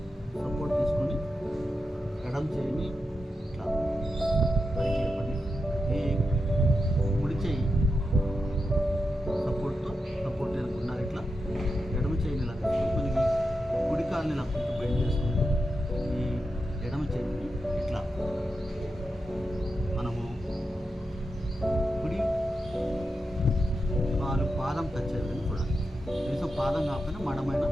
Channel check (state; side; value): normal; both; correlation 0.88